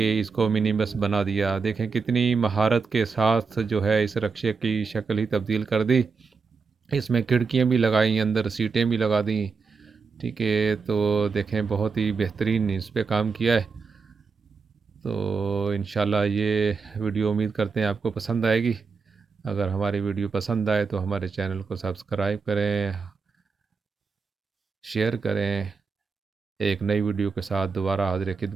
اس کو منی بس بنا دیا۔ دیکھیں کتنی مہارت کے ساتھ جو ہے اس رکشے کی شکل ہی تبدیل کر دی۔ اس میں کھڑکیاں بھی لگائیں، اندر سیٹیں بھی لگا دیں، ٹھیک ہے۔ تو دیکھیں بہت ہی بہترین اس پہ کام کیا ہے۔ تو انشاءاللہ یہ ویڈیو امید کرتے ہیں آپ کو پسند آئے گی۔ اگر ہماری ویڈیو پسند آئے تو ہمارے چینل کو سبسکرائب کریں، شیئر کریں۔ ایک نئی ویڈیو کے ساتھ دوبارہ حاضر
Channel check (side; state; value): left; quieter; 5.1 dB